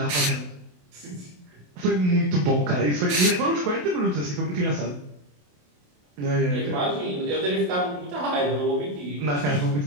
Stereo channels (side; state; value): left; late; 27 ms